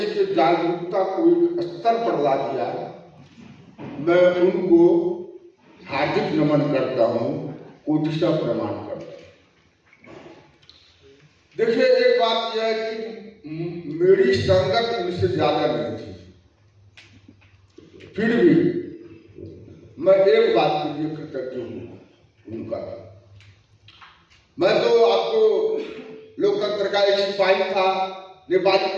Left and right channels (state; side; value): identical; both; correlation 1.00